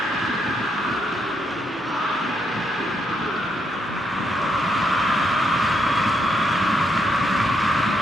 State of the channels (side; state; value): both; normal; correlation 0.77